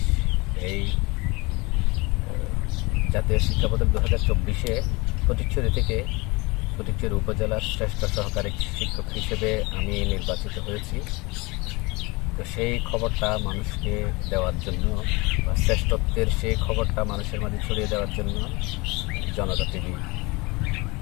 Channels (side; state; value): right; quieter; 25.1 dB